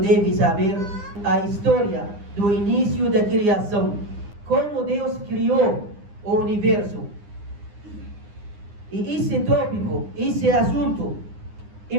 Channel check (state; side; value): late; left; 9.8 ms